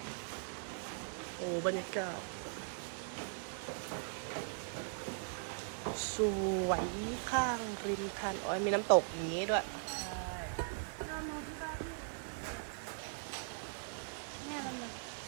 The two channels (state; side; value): silent; left; digital silence